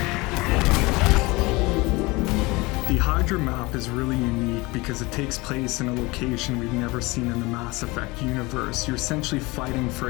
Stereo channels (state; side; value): quieter; right; 23.4 dB